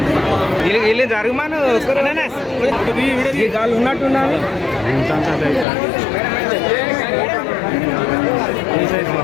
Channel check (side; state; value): right; drops out; at 5.7 s